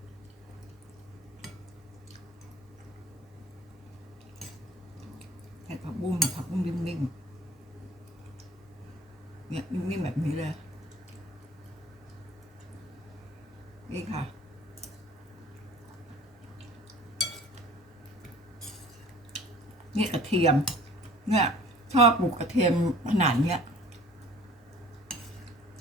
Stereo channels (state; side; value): normal; both; correlation 0.48